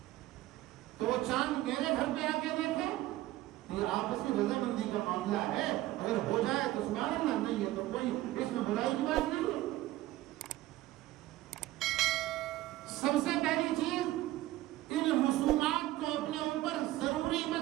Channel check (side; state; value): left; quieter; 16.2 dB